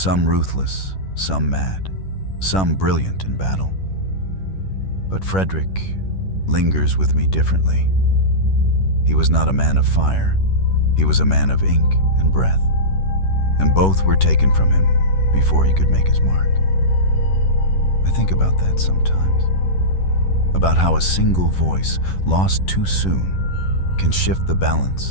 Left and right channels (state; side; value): late; right; 11 ms